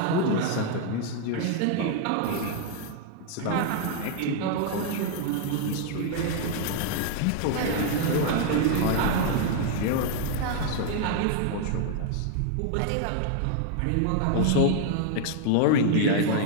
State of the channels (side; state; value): both; different; correlation 0.00